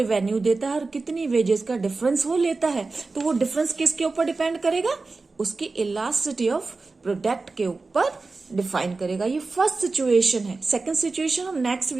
देता है और कितनी वेजेस का डिफरेंस वो लेता है, तो वो डिफरेंस किसके ऊपर डिपेंड करेगा, उसकी इलास्टिसिटी ऑफ प्रोडक्ट के ऊपर डिफाइन करेगा। ये फर्स्ट सिचुएशन है। सेकंड सिचुएशन हम नेक्स्ट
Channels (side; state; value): left; quieter; 3.8 dB